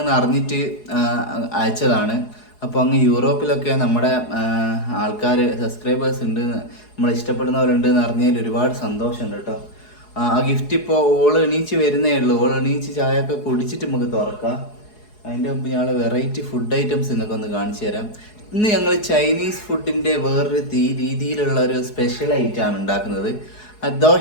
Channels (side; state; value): right; late; 4.8 ms